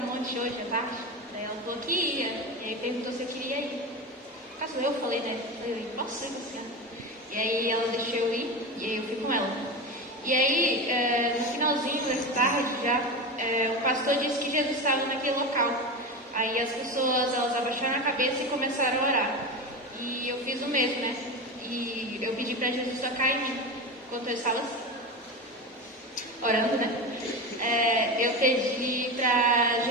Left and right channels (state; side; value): normal; both; correlation 0.22